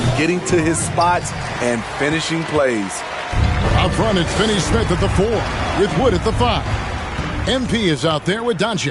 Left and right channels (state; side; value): identical; both; correlation 1.00